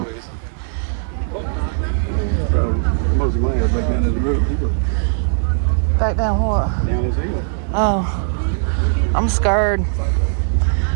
Most of mine are back down to the road. Back down what? Down this hill. Oh, I'm scared.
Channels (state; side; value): silent; left; digital silence